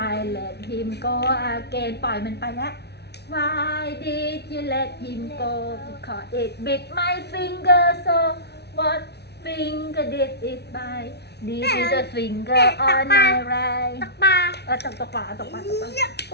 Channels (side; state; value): right; late; 0.49 ms